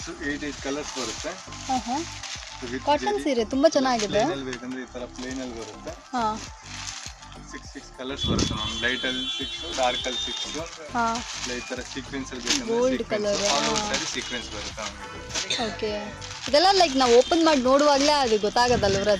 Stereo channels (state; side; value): identical; both; correlation 1.00